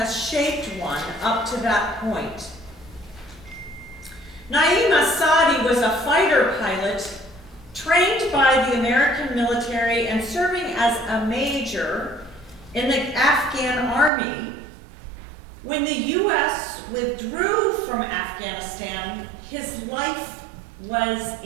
shaped one up to that point. Naeem Asadi was a fighter pilot trained by the American military and serving as a major in the Afghan army. When the U.S. withdrew from Afghanistan, his life was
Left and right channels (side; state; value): left; drops out; at 14.1 s